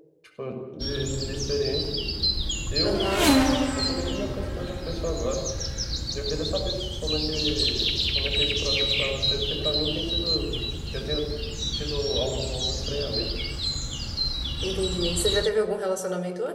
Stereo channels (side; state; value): both; identical; correlation 1.00